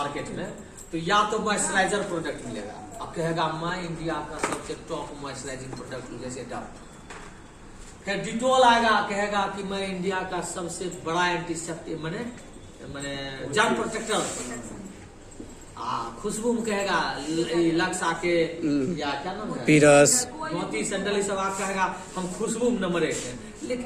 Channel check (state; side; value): identical; both; correlation 1.00